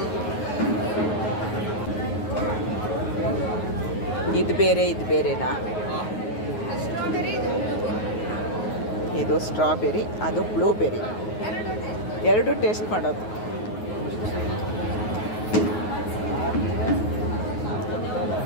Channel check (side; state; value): right; late; 9.4 ms